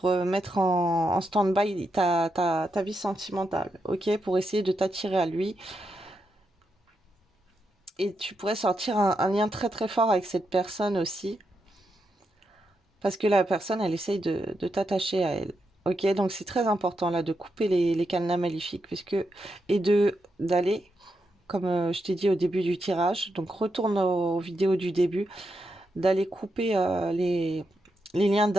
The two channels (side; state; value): both; normal; correlation 0.84